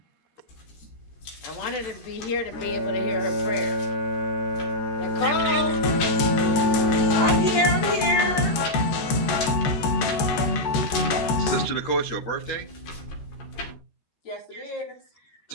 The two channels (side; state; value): right; late; 13 ms